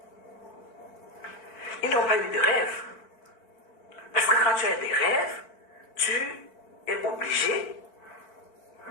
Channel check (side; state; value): right; late; 4.5 ms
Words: Ils n'ont pas eu de rêve. Parce que quand tu as des rêves, tu es obligé